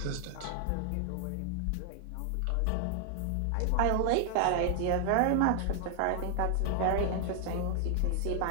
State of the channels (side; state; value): both; different; correlation 0.00